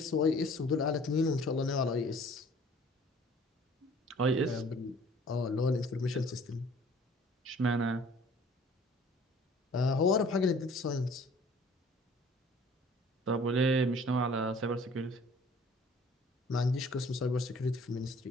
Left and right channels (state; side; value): normal; both; correlation 0.52